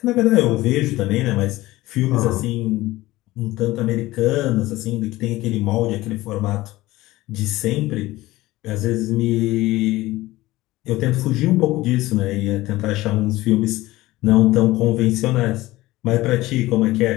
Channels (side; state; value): right; quieter; 18.0 dB